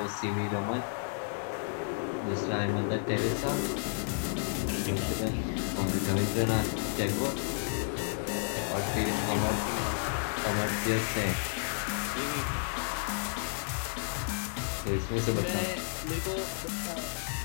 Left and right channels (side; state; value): right; silent; digital silence